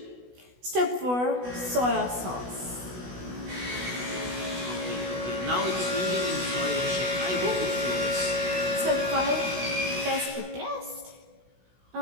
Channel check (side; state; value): left; late; 16 ms